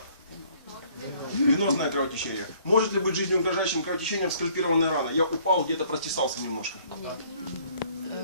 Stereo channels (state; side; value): inverted; both; correlation -0.60